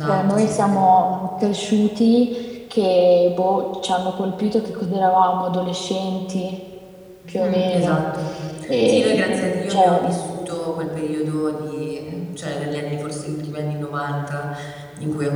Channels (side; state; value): both; identical; correlation 1.00